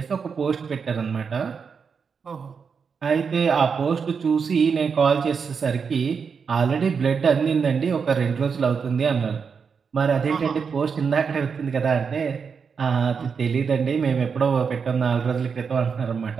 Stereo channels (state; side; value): quieter; left; 6.0 dB